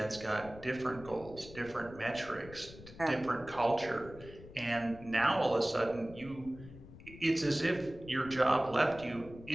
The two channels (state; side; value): noise; left; rumble, 17 dB below the sound